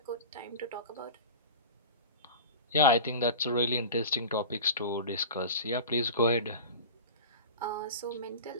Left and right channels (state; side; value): inverted; both; correlation -0.32